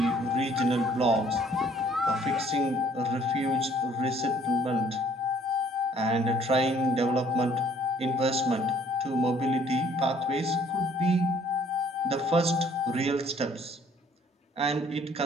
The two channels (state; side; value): normal; both; correlation 0.60